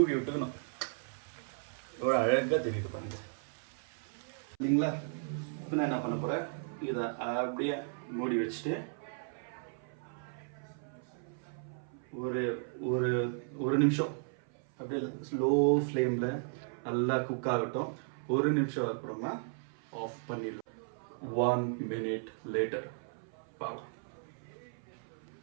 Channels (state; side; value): silent; left; 54 dB below the other